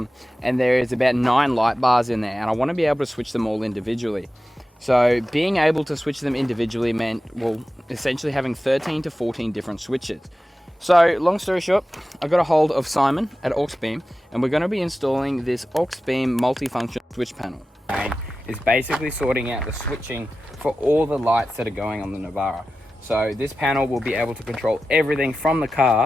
there is about 9 light bars in there, and I want to be able to switch them all individually. So being able to switch them individually meant, well, essentially having 13 to 14 different switches. So long story short, I got a hold of Simon at Auxbeam, and we're going to be installing this Auxbeam multifunction switch panel. Is basically sorting out the switching for all the lights that are going on the Navara. So this panel will be able to control everything from the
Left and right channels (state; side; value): normal; both; correlation 0.94